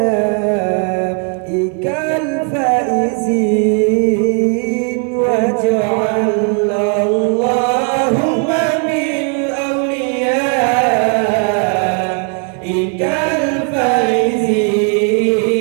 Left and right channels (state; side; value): quieter; left; 40.0 dB